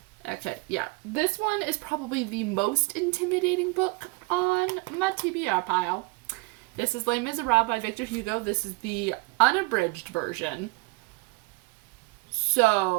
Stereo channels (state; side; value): quieter; left; 26.8 dB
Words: Okay, yeah, this one is probably the most intimidating book on my TBR pile. This is Les Miserables by Victor Hugo. This is the unabridged version.